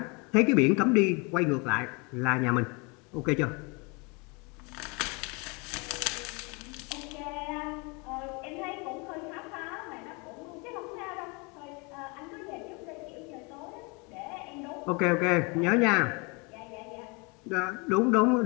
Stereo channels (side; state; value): right; quieter; 30.3 dB